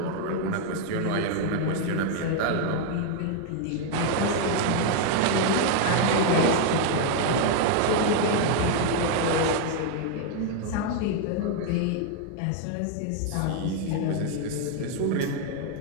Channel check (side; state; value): both; different; correlation 0.00